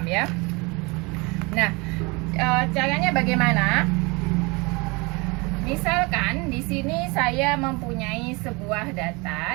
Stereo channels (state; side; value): quieter; left; 27.0 dB